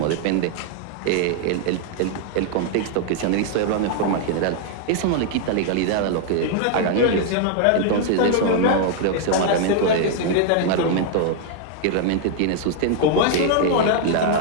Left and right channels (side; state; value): both; different; correlation 0.00